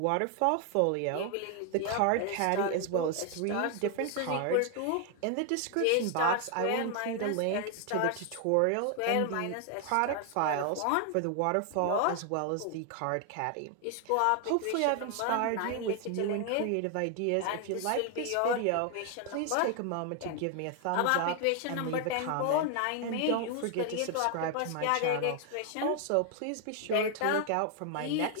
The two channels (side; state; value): both; different; correlation 0.00